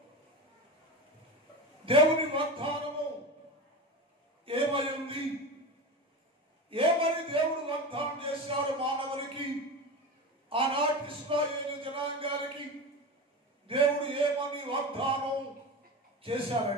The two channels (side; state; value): both; normal; correlation 0.26